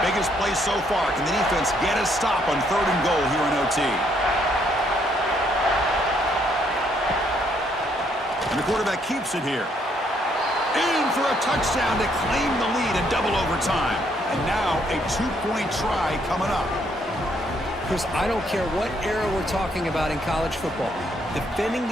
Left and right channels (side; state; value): both; normal; correlation 0.70